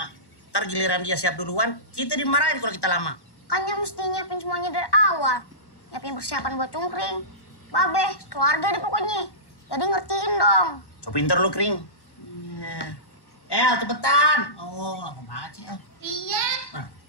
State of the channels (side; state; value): right; late; 1.1 ms